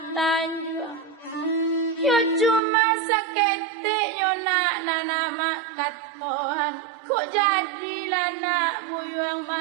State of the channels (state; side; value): drops out; left; at 2.6 s